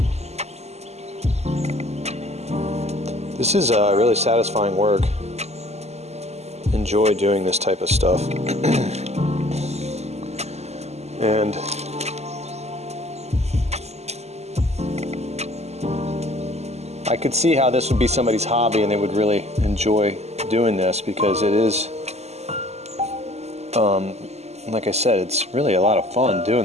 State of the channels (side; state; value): left; late; 0.31 ms